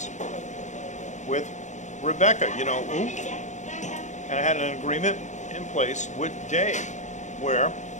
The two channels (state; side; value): late; right; 0.35 ms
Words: with Rebecca, you know, and I had an agreement in place with Dave where